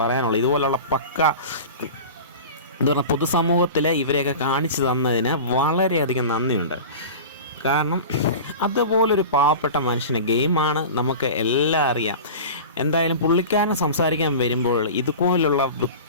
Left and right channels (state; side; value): inverted; both; correlation -0.33